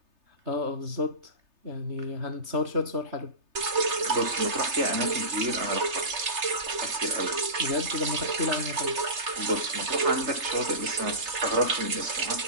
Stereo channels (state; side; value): late; left; 3.3 ms